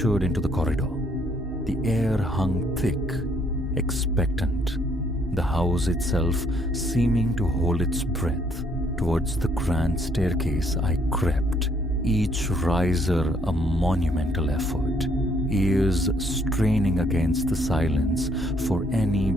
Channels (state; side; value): normal; both; correlation 0.67